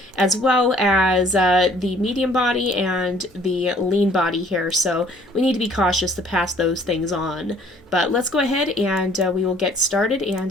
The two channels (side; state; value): both; normal; correlation 0.58